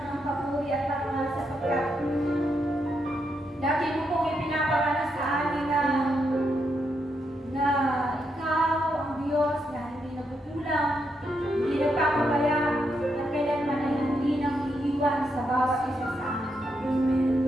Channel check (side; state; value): both; normal; correlation 0.81